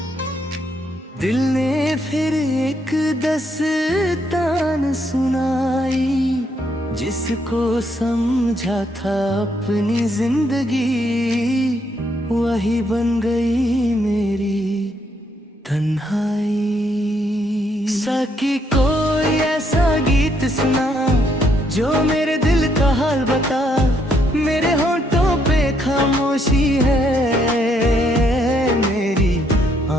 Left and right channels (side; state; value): both; normal; correlation 0.73